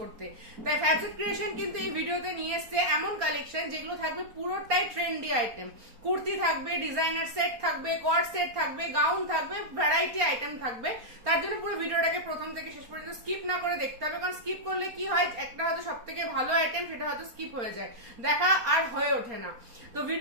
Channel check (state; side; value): late; left; 4.3 ms